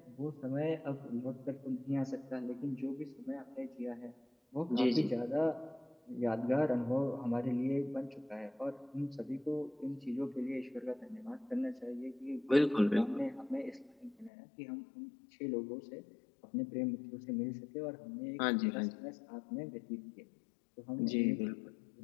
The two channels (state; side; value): drops out; right; at 14.3 s